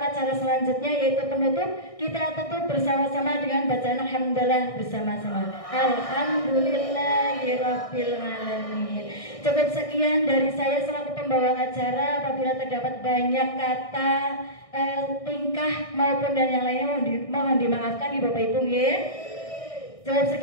acara selanjutnya yaitu penutup. Kita tutup bersama-sama dengan bacaan alhamdulillah bersama-sama. Alhamdulillahirabbil alamin. Cukup sekian dari saya selaku pembawa acara. Apabila terdapat banyak kata, tingkah maupun dan yang lainnya mohon dimaafkan di Bapak Ibu nggih. Cukup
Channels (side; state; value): right; late; 1.6 ms